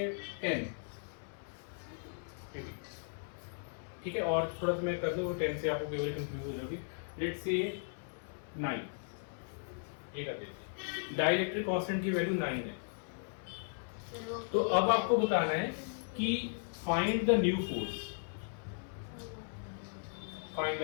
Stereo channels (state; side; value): silent; right; 53 dB below the other